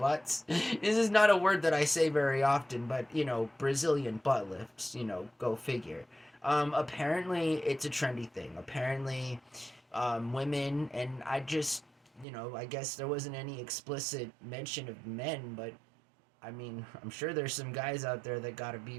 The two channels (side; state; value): left; drops out; at 12.2 s